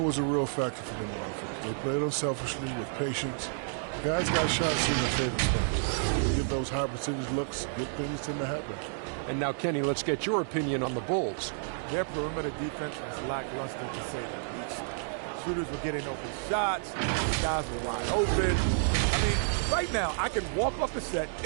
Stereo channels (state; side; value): silent; left; digital silence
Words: was a real factor for them on offense. They played unselfishly with patience. Guys got shots in their favorite spots. They get those high percentage looks, good things tend to happen. And now, Kenny, let's get your opinion on the Bulls. Their perimeter defense was lackluster, to say the least. Shooters were getting open shots. Guys were wide open. I mean, right now, I can walk up the set